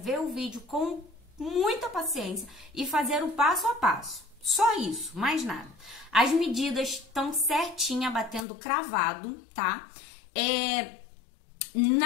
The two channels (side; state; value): right; drops out; at 8.5 s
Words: o vídeo com muita paciência e fazer o passo a passo. Só isso, mais nada. As medidas estão certinha, batendo cravado, tá?